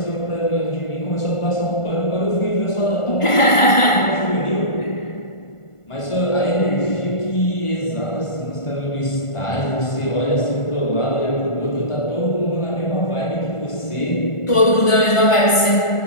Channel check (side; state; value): right; late; 1.5 ms